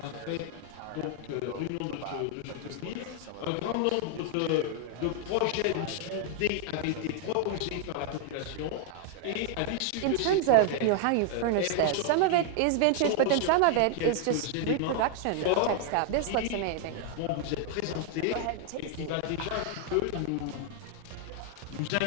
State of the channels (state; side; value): different; both; correlation 0.00